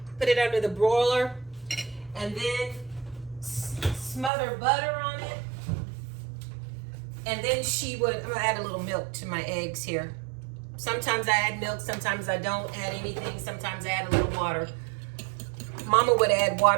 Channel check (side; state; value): left; drops out; at 4.3 s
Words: put it under the broiler, and then smother butter on it. And then she would, I'm gonna add a little milk to my eggs here. Sometimes I add milk, sometimes I don't add anything, sometimes I add a little water. Mama would add